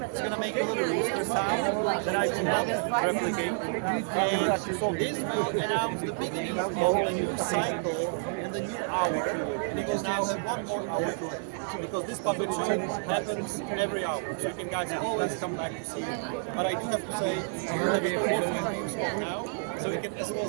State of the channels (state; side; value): silent; left; digital silence